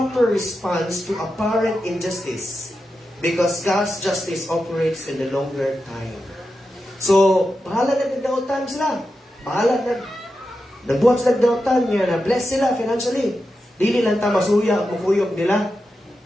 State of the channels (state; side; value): normal; both; correlation 0.89